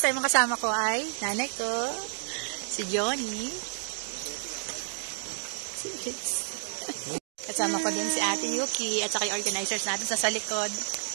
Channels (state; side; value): silent; left; digital silence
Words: time, ang kasama ko ay nanay ko, si Johnny. Kasama ko din si Ate Yuki at saka yung organizers natin sa likod.